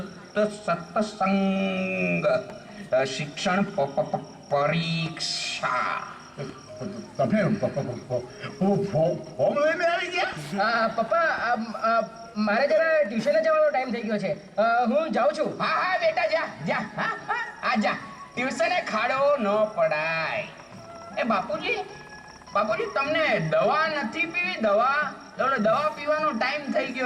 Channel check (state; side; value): identical; both; correlation 1.00